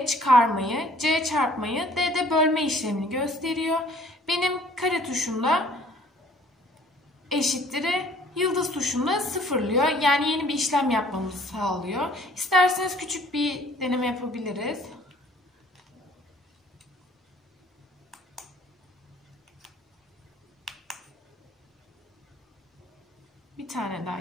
çıkarmayı, C çarpmayı, D de bölme işlemini gösteriyor. Benim kare tuşumda eşittir'i, yıldız tuşunda sıfırlıyor. Yani yeni bir işlem yapmamızı sağlıyor. İsterseniz küçük bir deneme yapabiliriz. Bir tane daha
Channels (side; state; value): both; normal; correlation 0.56